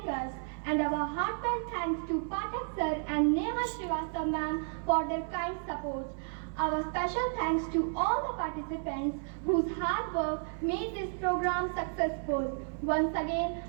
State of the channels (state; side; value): silent; left; 56 dB below the other